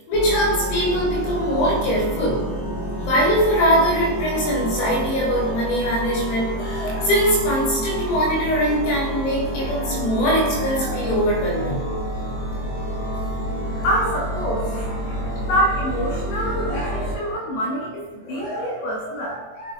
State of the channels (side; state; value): right; late; 22 ms